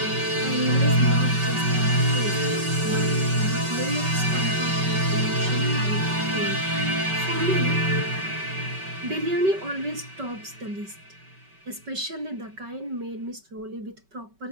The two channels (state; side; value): late; left; 5.2 ms